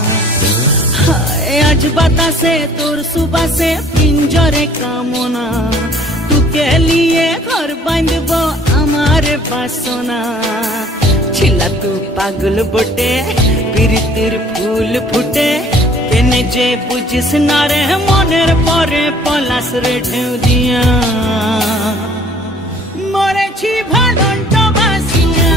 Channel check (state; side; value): normal; both; correlation 0.55